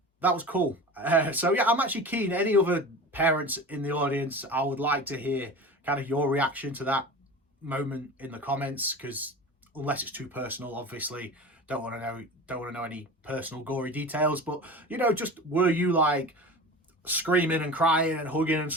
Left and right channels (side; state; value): both; normal; correlation 0.33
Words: that was cool. So yeah, I'm actually keen. Any other parents in the audience, I would like to hear kind of your reaction to that moment in the comments, because unless it's too personal, obviously don't want to know any personal gory details. But, you know, just, were you like screaming and crying and hugging and